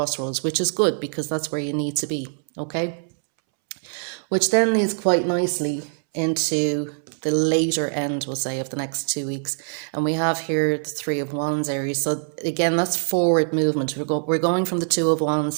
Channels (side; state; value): left; silent; 63 dB below the other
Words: which is good because that's where you need to be. Okay, which then leads quite nicely into the later end, we'll say, of the next 2 weeks. And we have here the Three of Wands, Aries. So again, that's forward movement. We're going from the Two of